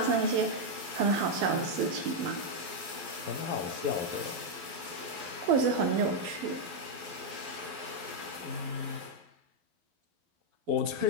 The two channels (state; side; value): late; left; 12 ms